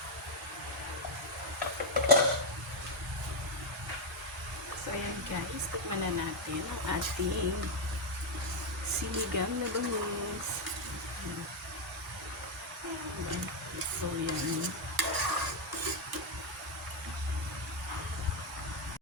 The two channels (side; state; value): both; normal; correlation 0.02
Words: So, ayan guys. Tikman na natin ang ating sinigang na bangus. So, yan.